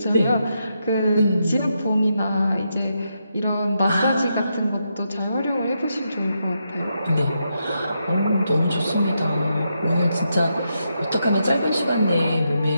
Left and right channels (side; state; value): both; inverted; correlation -0.83